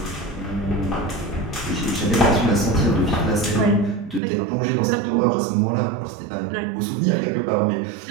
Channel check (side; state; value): left; drops out; at 4.2 s